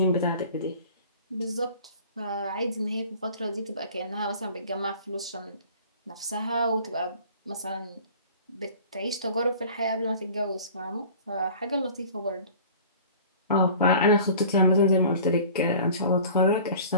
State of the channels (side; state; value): both; inverted; correlation -0.44